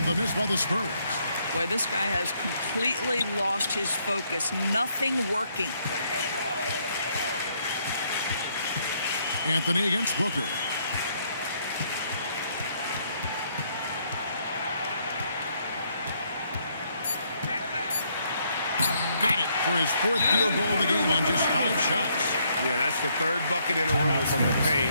the miss by the Spurs. Boy, this guy has completely lost his focus. Nothing working. Anthony against Booker. Got it for his 4th field goal of the game on just 5 shots. Yeah, that's the 3rd bucket in a row from the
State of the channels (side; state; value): both; inverted; correlation -0.71